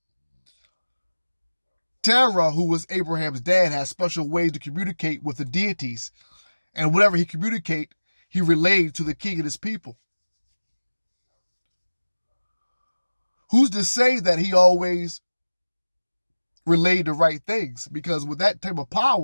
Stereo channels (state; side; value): inverted; both; correlation -1.00